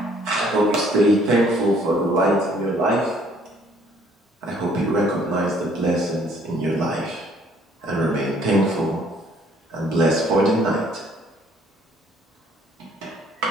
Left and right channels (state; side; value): normal; both; correlation 0.61